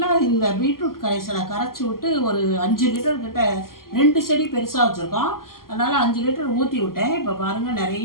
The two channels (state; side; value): late; right; 0.92 ms